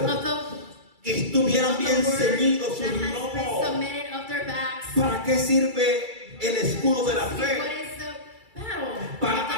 of the que estuvieran bien ceñidos sus that has been lomos. submitted of their backs. ¿Para qué sirve el escudo de la What fe? is the battle? Para of the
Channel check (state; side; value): late; left; 2.3 ms